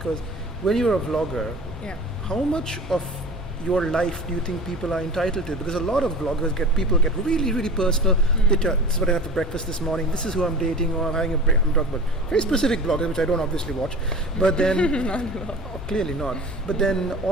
when you're a vlogger, how much of your life do you think people are entitled to? Because a lot of vloggers get really, really personal. They tell, this is what I had for breakfast this morning, this is who I'm dating, or I'm having a break. I'm talking about very specific vloggers, which I don't obviously watch. But then, clearly not. But then,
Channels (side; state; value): both; normal; correlation 0.37